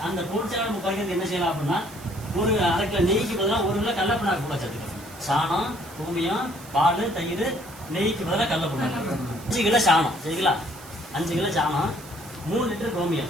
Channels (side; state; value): right; noise; hiss, 19 dB below the sound